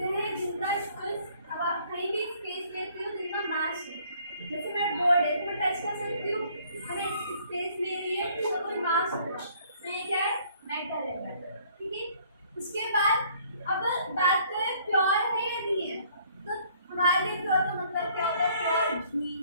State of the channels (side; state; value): both; inverted; correlation -0.60